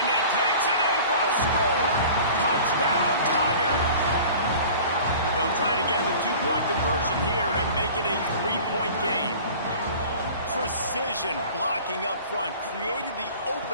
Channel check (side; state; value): both; inverted; correlation -0.43